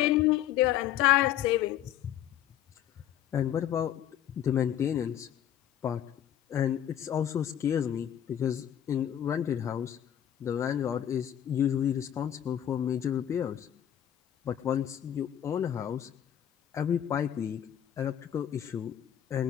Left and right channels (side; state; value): right; quieter; 10.6 dB